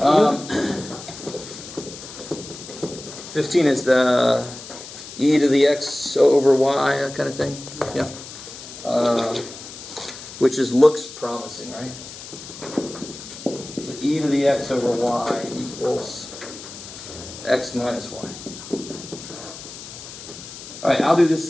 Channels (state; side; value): noise; left; hiss, 13 dB below the sound